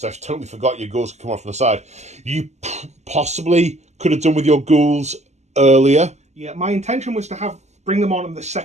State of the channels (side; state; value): left; late; 0.33 ms